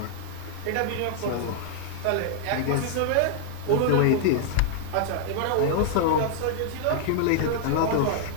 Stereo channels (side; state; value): both; different; correlation -0.01